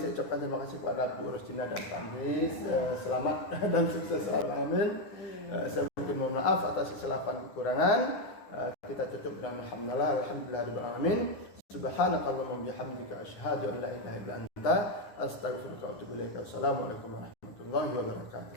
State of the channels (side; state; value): right; late; 9.6 ms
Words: ucapkan terima kasih kepada Bu Rosina dan Pak Andri. Selamat dan sukses selalu. Amin. Saya mohon maaf atas kesilapan kekurangan. Kita tutup dengan alhamdulillahirabbil alamin. Subhanakallahumma bihamdika asyhadu an la ilaha illa anta astaghfiruka wa atubu ilaik. Assalamualaikum warahmatullahi wabarakatuh.